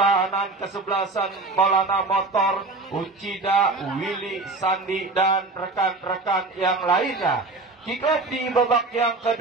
kesebelasan Maulana Motor, Ucida, Willy, Sandi, dan rekan-rekan yang lainnya. Kick off di babak yang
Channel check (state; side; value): quieter; left; 3.4 dB